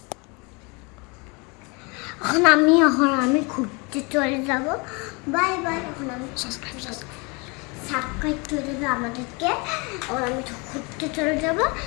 এখন আমি ঘুরতে চলে যাব। Bye bye. এখন আমি সাবস্ক্রাইব করে দেবে আমাদেরকে। এখন আমি ঘুরতে চলে যাব।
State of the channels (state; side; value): quieter; right; 29.4 dB